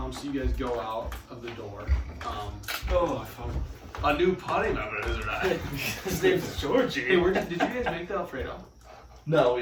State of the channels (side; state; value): both; identical; correlation 1.00